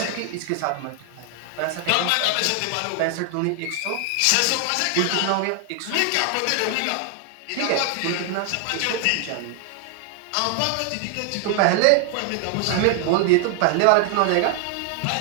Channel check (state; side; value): different; both; correlation 0.00